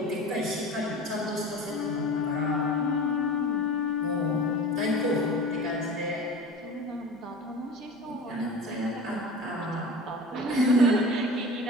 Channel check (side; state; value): both; normal; correlation 0.35